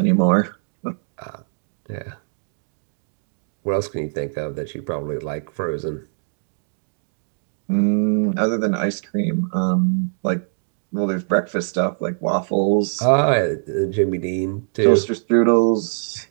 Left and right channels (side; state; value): left; silent; digital silence